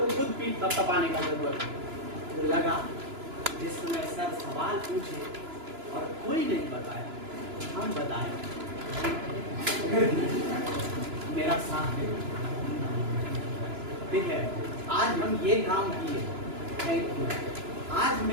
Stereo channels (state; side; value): late; left; 2.9 ms